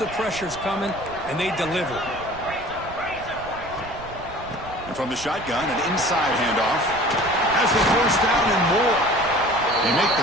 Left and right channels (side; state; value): right; noise; rumble, 15 dB below the sound